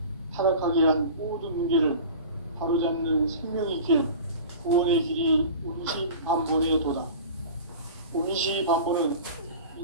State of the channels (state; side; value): inverted; both; correlation -0.37